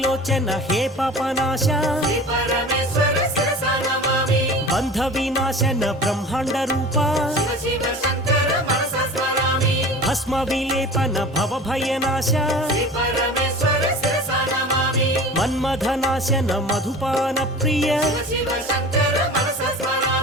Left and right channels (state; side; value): normal; both; correlation 0.38